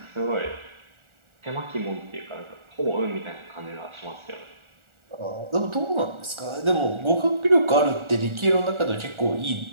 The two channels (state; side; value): late; left; 1.4 ms